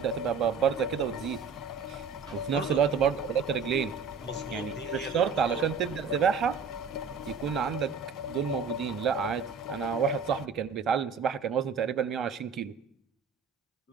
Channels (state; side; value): quieter; left; 5.4 dB